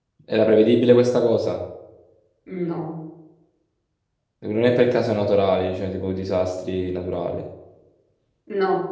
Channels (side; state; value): both; identical; correlation 1.00